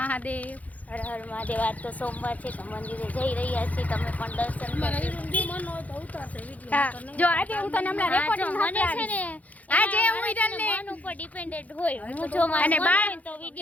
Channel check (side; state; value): right; late; 0.074 ms